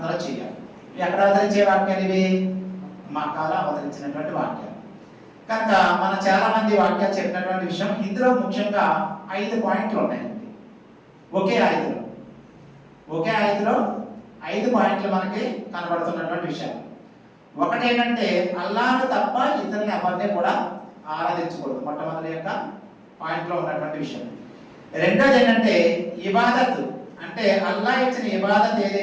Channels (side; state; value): both; identical; correlation 1.00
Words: చేయాలి. ఎక్కడ అవతరించే వాక్యాలు ఇవి? మక్కాలో అవతరించినటువంటి వాక్యాలు. కనుక మన చాలా మంది వాక్యాలు చెప్పినటువంటి విషయం ఇందులో ముఖ్యంగా 5 పాయింట్లు ఉన్నాయండి. ఒకే ఆయతలో 5 పాయింట్లు మనకి కనబడుతున్నటువంటి విషయాలు. ఒకటి ఏంటంటే అల్లాహ్ను తప్ప ఇతరుల్ని ఎవరిని కూడా ఆరాధించకూడదు. మొట్టమొదటి యొక్క పాయింట్లో ఉన్నటువంటి విషయం. రెండోది ఏంటంటే ఇబాదత్, అంటే అల్లాహ్ ఇచ్చిన ఇబాదత్